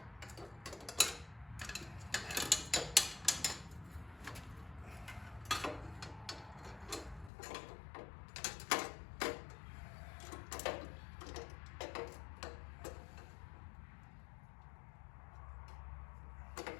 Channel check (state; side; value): drops out; right; at 7.3 s